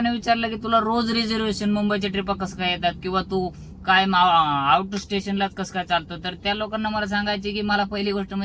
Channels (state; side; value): identical; both; correlation 1.00